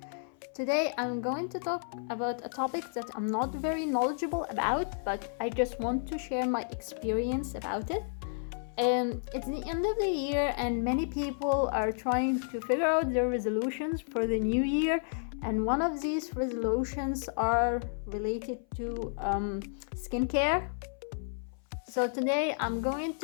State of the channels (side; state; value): right; silent; 57 dB below the other